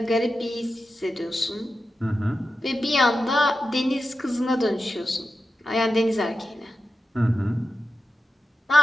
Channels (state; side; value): normal; both; correlation 0.91